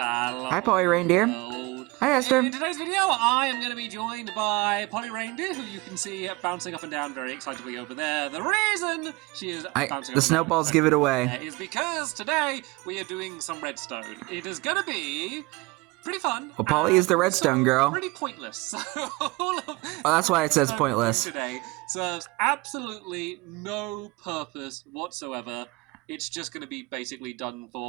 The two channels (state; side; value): quieter; left; 23.4 dB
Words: Polly Reindeer. World. Hi, Esther. In today's video, I am going to be joined by Polly Reindeer, who you can see bouncing up and down very excitably over there. The reason she is bouncing the snowballs give it away. Is because today we are doing some redstone. It is going to be pretty fun. Well, Polly is the redstone girl. Pretty pointless. That's why it says pointless. Today serves absolutely no purpose whatsoever. It's just going to be basically done